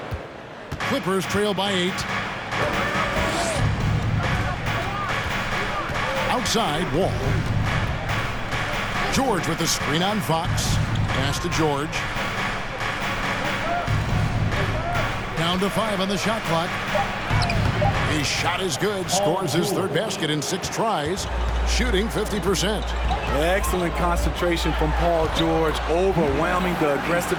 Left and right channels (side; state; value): both; identical; correlation 1.00